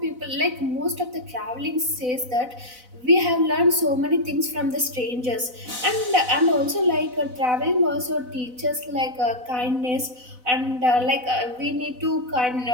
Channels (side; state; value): left; late; 4.0 ms